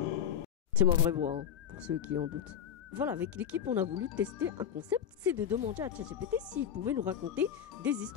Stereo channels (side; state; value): right; quieter; 9.3 dB